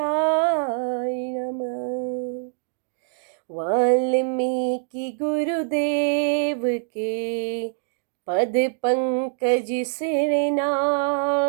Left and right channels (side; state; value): left; silent; digital silence